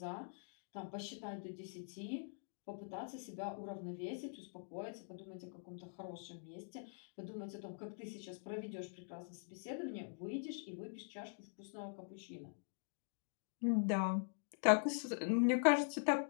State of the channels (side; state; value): right; silent; digital silence